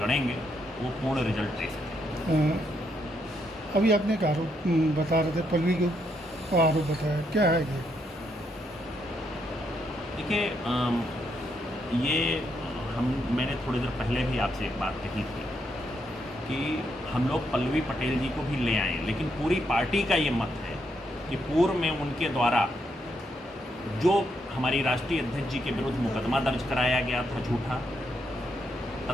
वो पूर्ण रिजल्ट दे सकें। अभी आपने एक आरोप बता रहे थे, पल्लवी को आरोप बताया, क्या है ये? देखिए, मैंने थोड़ी देर पहले भी आपसे एक बात कही थी कि हम लोग पल्लवी पटेल जी को भी ले आए, लेकिन पूरी पार्टी का ये मत है कि पूर्व में उनके द्वारा जो हमारी राष्ट्रीय अध्यक्ष जी के विरुद्ध मुकदमा दर्ज कराया गया था झूठा,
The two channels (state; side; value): normal; both; correlation 0.77